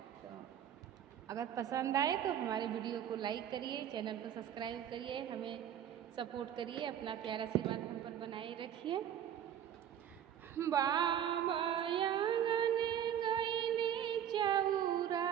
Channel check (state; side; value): quieter; left; 9.9 dB